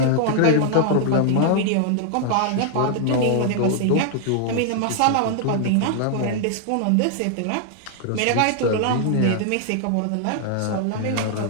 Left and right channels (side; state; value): both; different; correlation 0.00